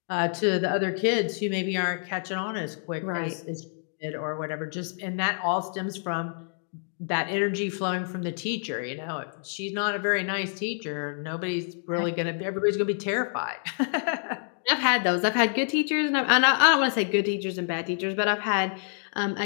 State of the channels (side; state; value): right; silent; 58 dB below the other